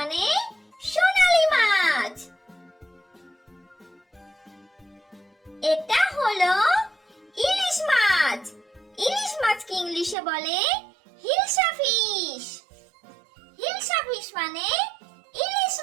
সোনালী মাছ। এটা হলো ইলিশ মাছ। ইলিশ মাছকে ইংলিশে বলে হিলসা ফিশ। হিলসা ফিশ মানে ইলিশ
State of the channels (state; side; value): drops out; left; at 10.2 s